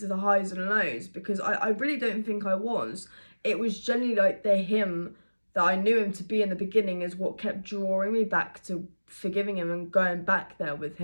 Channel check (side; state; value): both; inverted; correlation -1.00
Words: to the highs and lows, because I really don't think I was. It was generally like the him that I knew him to be in the beginning is what kept drawing me back to forgiving him and going back there with